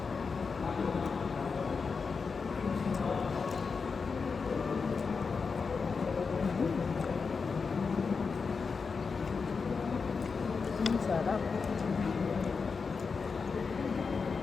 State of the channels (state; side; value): quieter; right; 5.1 dB